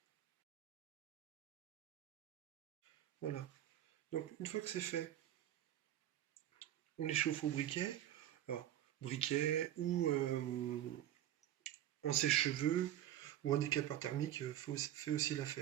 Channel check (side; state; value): left; quieter; 12.0 dB